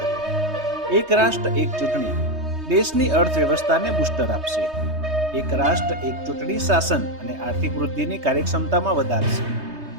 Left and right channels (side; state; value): left; late; 3.2 ms